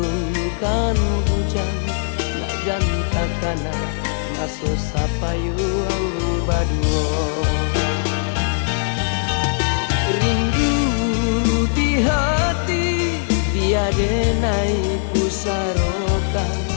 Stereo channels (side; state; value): right; silent; digital silence